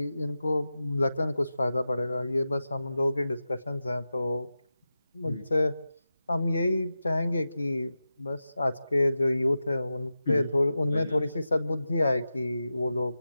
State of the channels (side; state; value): both; inverted; correlation -0.93